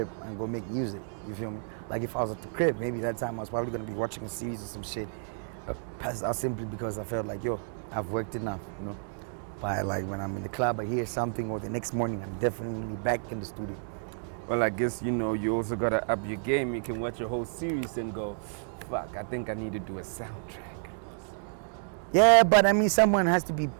and go make music. You feel me? Like if I was at the crib, maybe that time I was probably gonna be watching a series or some shit. Passed out simply because I felt like, yo, I've worked enough, you know. But like when I'm in the club, I hear something, or the next morning, I'm definitely back in the studio. Well, I guess, you know, you also gotta up your game. You can watch a whole series and go, fuck, I think I need to do a soundtrack. Yeah, but I mean, someone has to be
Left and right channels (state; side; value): silent; left; digital silence